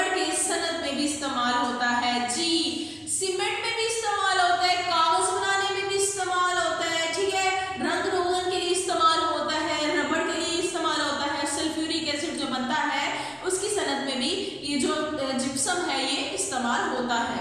के सनत में भी इस्तेमाल होता है। जी, सीमेंट में भी इस्तेमाल होता है, कागज बनाने में भी इस्तेमाल होता है, ठीक है, रंग रोगन के लिए इस्तेमाल होता है, रबड़ के लिए इस्तेमाल होता है, सल्फ्यूरिक एसिड जो बनता है उसकी सनत में भी ये जो जिप्सम है ये इस्तेमाल होता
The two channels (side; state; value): both; identical; correlation 1.00